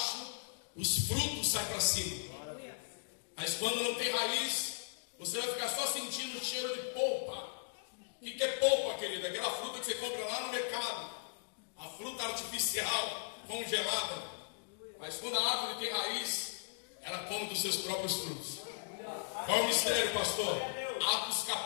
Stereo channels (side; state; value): right; silent; digital silence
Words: os frutos saem para cima. Mas quando não tem raiz, você vai ficar só sentindo o cheiro de polpa. O que é polpa, querido? Aquela fruta que você compra lá no mercado. A fruta artificial, congelada. Mas quando a árvore tem raiz, ela come dos seus próprios frutos. Qual é o mistério, pastor? Atos